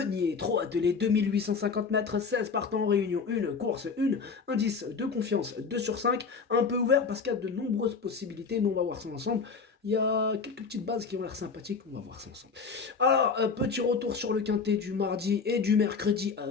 Trop attelé, 2850 mètres, 16 partants en réunion, une course, une indice de confiance 2 sur 5, un peu ouvert parce qu'il y a de nombreuses possibilités, mais on va voir ça ensemble. Il y a quelques petites bases qui ont l'air sympathiques, on va voir ça ensemble. Alors, petit retour sur le quintet du mardi et du mercredi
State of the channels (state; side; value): quieter; right; 5.2 dB